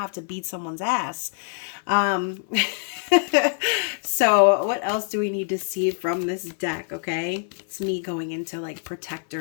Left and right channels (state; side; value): silent; right; 57 dB below the other